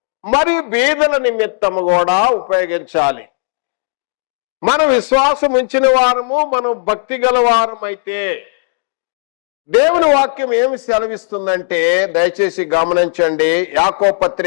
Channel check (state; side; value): silent; right; digital silence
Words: మరి బీదల నిమిత్తము కూడా ఉపయోగించాలి. మనం విశ్వాసం ఉంచిన వారము, మనం భక్తి గల వారం అయితే దేవుని వాక్యం ఏమి సెలవిస్తుందంటే, దయచేసి గమనించండి. యాకోబు